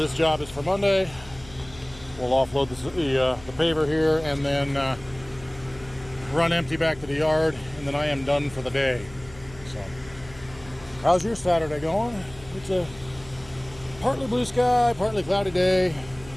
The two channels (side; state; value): left; noise; hum, 20 dB below the sound